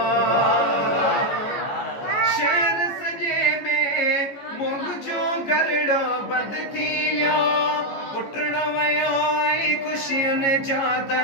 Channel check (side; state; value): right; late; 14 ms